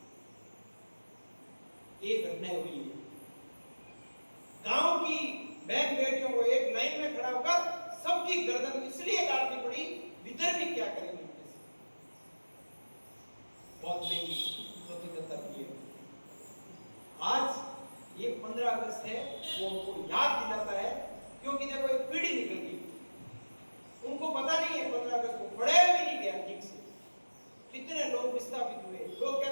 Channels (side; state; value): both; inverted; correlation -1.00